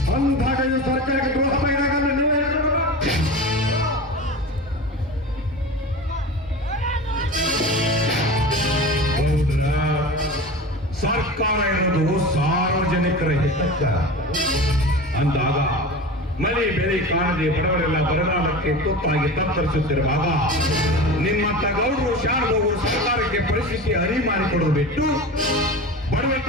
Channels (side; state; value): both; normal; correlation 0.31